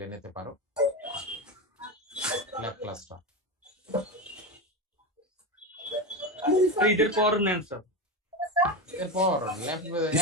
নিতে পারো ল্যাব ক্লাসটা। ঈদের পর নেন স্যার। এরপর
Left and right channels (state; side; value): normal; both; correlation 0.18